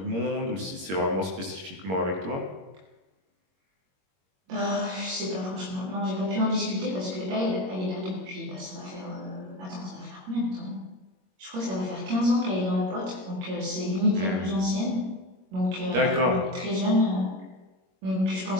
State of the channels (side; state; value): left; late; 21 ms